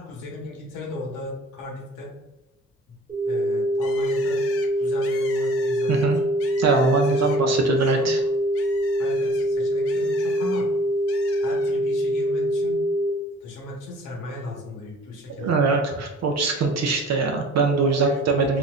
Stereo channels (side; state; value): both; normal; correlation 0.50